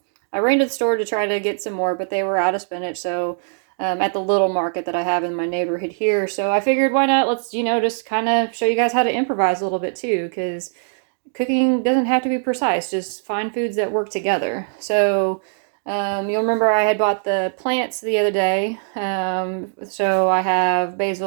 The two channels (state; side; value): silent; left; digital silence